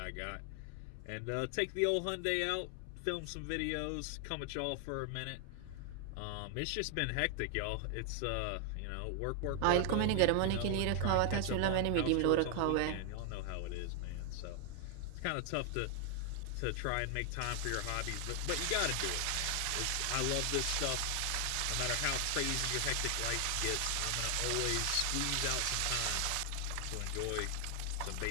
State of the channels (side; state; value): both; different; correlation 0.00